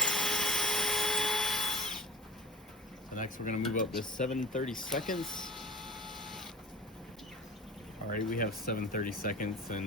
So next we're gonna move up to 7/32. All right, we have 7/32,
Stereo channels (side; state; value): both; normal; correlation 0.41